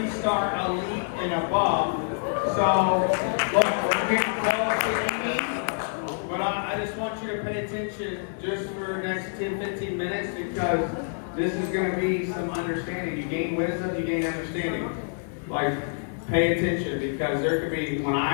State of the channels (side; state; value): right; silent; digital silence